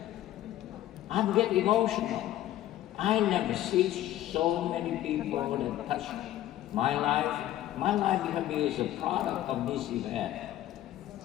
I get emotional. I never see so many people that touch my life. My life can be as a product of this event.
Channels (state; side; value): quieter; right; 13.4 dB